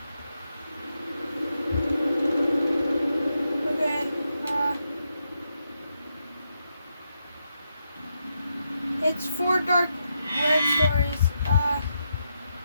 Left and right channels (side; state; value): both; inverted; correlation -0.83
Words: Okay, it's 4 Dark Web stories.